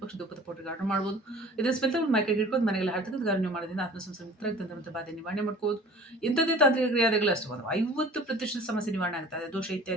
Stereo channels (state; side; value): normal; both; correlation 0.45